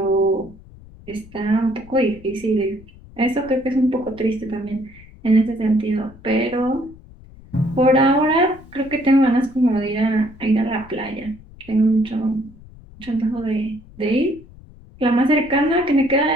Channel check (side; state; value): left; noise; rumble, 21 dB below the sound